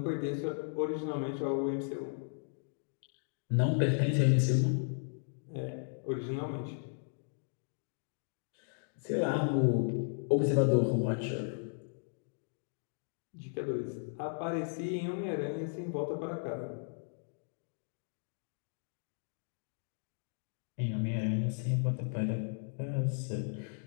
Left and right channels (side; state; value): right; silent; digital silence